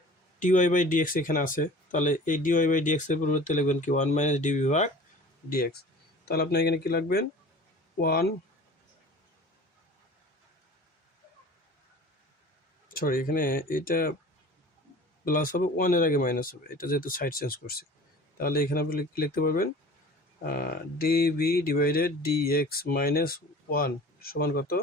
dy/dx এখানে আছে, তাহলে এই dy/dx এর পরিবর্তে লিখবেন কি 1 মাইনাস dv/dx। তাহলে আপনি এখানে কি লিখবেন 1, সরি এখানে এটা প্লাস হবে, 1 এর আগে মাইনাস হবে, এটা যেহেতু সাইড চেঞ্জ করছি। তাহলে এখানে আপনি কি লিখতে পারবেন dv/dx মাইনাস 1 সমান কত,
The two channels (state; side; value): normal; both; correlation 0.42